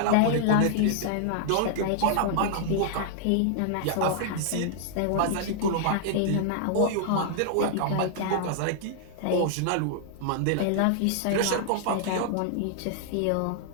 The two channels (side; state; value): both; different; correlation -0.01